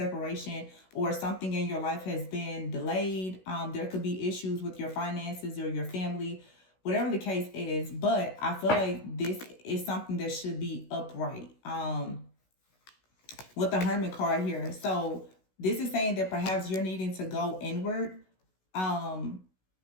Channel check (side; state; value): right; late; 16 ms